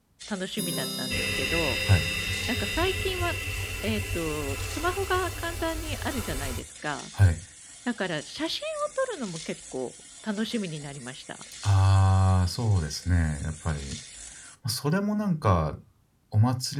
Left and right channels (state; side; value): identical; both; correlation 1.00